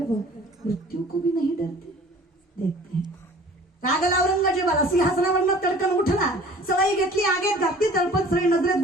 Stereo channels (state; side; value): normal; both; correlation 0.48